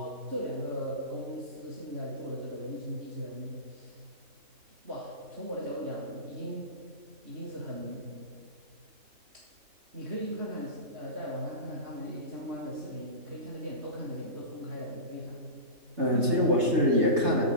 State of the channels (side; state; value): left; late; 3.3 ms